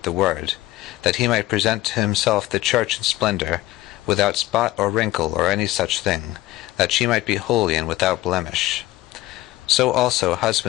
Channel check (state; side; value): quieter; right; 16.9 dB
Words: the word, that he might present to himself the church in splendor, without spot or wrinkle or any such thing, that she might be holy and without blemish. So also